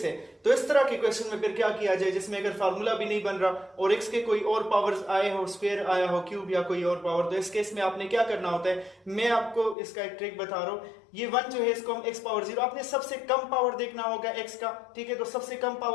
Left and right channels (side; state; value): right; drops out; at 9.8 s